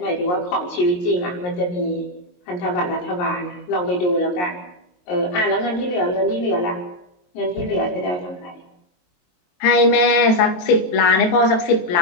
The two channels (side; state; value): right; late; 22 ms